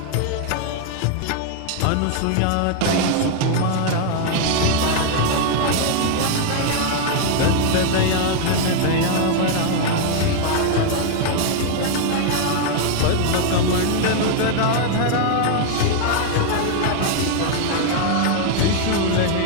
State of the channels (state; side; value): different; both; correlation 0.00